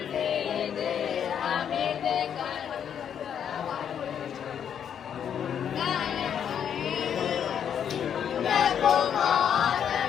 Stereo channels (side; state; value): right; quieter; 8.5 dB